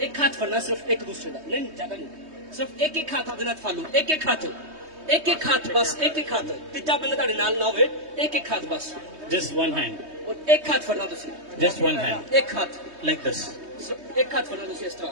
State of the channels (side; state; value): left; late; 3.2 ms